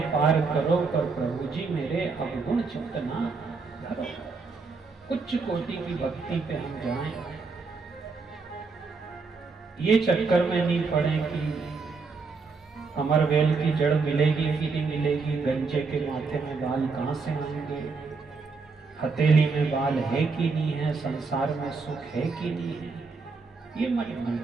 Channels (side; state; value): left; quieter; 4.4 dB